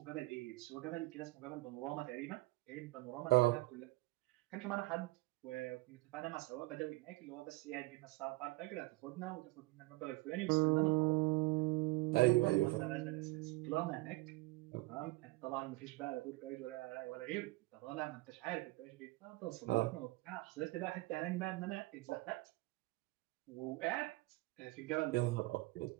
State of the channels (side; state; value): left; quieter; 21.8 dB